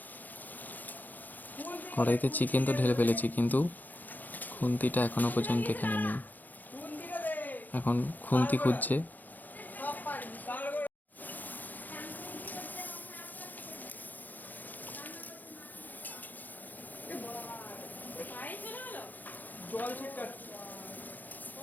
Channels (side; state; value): right; late; 0.084 ms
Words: কড়াইতে চিকেন তো ঢেলে ফেলেছি, কিন্তু খুন্তিটা এখনো পর্যন্ত এখানে নেই। এখন খুন্তি খুঁজছে। জল ছিটকাচ্ছি।